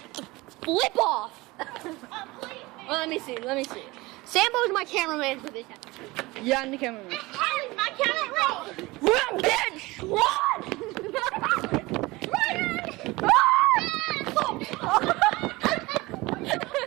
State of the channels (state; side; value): quieter; left; 21.6 dB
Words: Flip off. Well, let me see. Sambo's my cameraman for this episode. Yeah, I'm the cameraman. Riley's my cameraman. Run, bitch! Run!